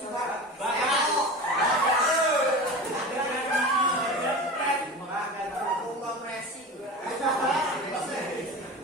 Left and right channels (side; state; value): both; normal; correlation 0.30